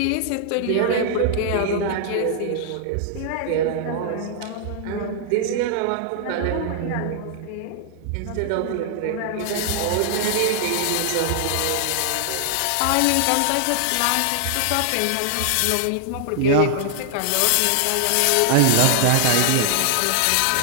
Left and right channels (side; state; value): both; different; correlation 0.00